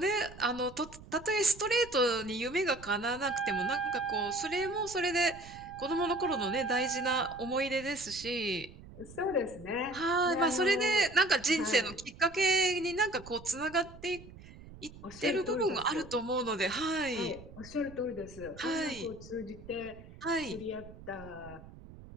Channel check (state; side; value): noise; right; rumble, 18 dB below the sound